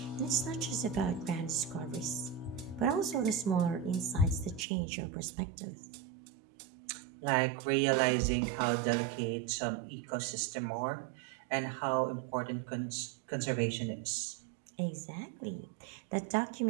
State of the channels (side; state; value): left; drops out; at 4.7 s